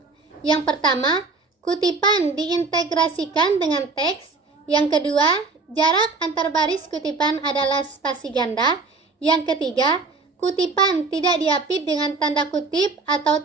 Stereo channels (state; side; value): quieter; left; 4.0 dB